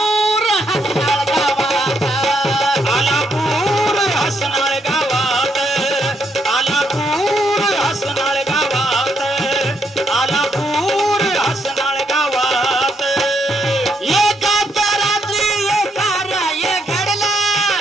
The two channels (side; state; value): both; normal; correlation 0.76